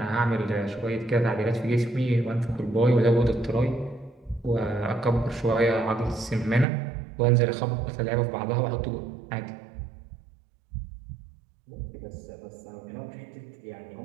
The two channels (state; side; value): drops out; left; at 6.7 s